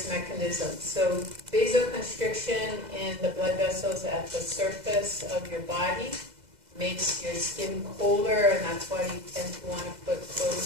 mechanisms. So vasoconstriction in the blood vessels at the surface of your body makes your skin colder, and that's why you tend to want to put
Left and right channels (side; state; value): left; late; 2.0 ms